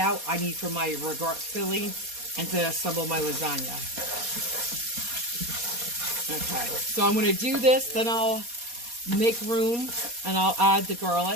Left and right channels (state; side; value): late; left; 4.2 ms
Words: out. I need for my regard filling and to assemble my lasagna. Okay, so I'm going to do this, then I'll make room and I'll add the